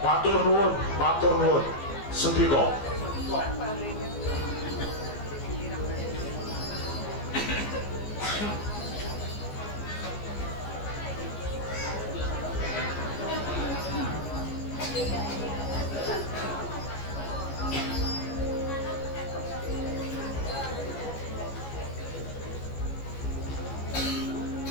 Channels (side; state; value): right; late; 14 ms